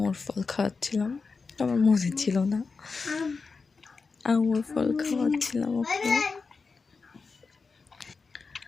ফল খাওয়াচ্ছিলাম। আমার মনে ছিল না, আঙুর ফল খাওয়াচ্ছিলাম ওকে।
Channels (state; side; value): quieter; right; 4.6 dB